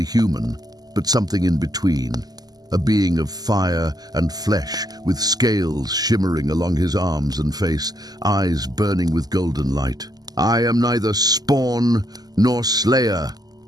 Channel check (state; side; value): late; left; 0.19 ms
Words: human, but something in between. A being of fire and flesh, with scales shimmering along his arms and face, eyes burning with golden light. I am neither spawn nor slayer,